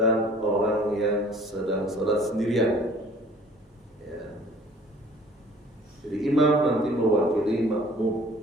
orang yang sedang salat sendirian. Ya. Jadi imam nanti mewakili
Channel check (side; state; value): both; normal; correlation 0.51